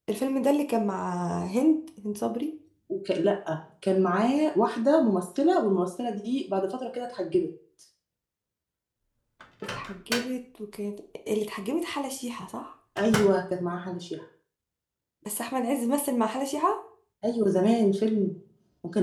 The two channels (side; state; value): both; identical; correlation 1.00